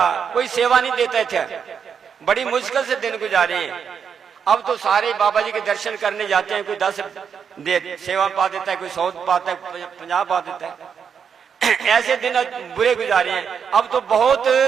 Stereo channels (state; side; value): quieter; left; 7.0 dB